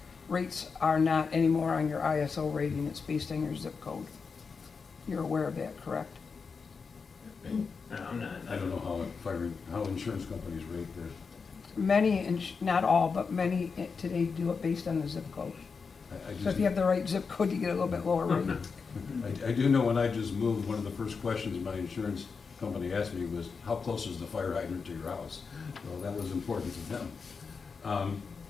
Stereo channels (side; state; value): right; quieter; 5.2 dB